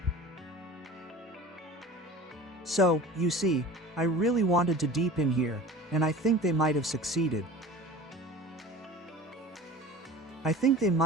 So, you see, I really wanted to deepen here, and I think they might have succeeded. I think they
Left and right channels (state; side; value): normal; both; correlation 0.40